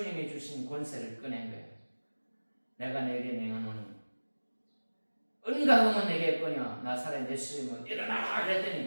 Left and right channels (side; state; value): both; inverted; correlation -1.00